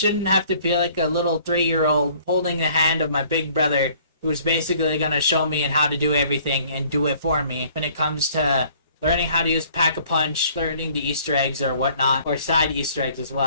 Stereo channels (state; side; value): inverted; both; correlation -0.56